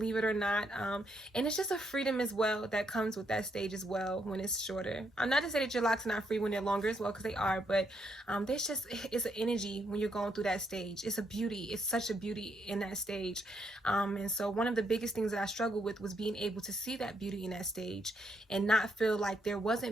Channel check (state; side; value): normal; both; correlation 0.76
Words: it or not. And it's just a freedom as well that comes with that stage as well when it's shorter. I'm not to say that your locks are not free when they're longer as well, because they are, but it's an energy when you're going through that stage. It's a beauty. It's such a beauty in that stage. And so one of the biggest things that I struggled with was being able to see that beauty in that stage and not feel like there